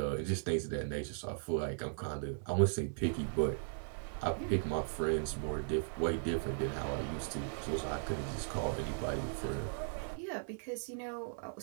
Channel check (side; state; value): left; silent; digital silence